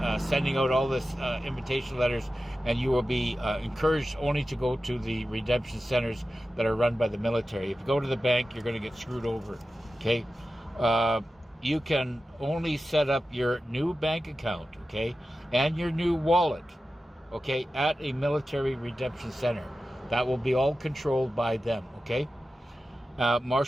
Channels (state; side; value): normal; both; correlation 0.93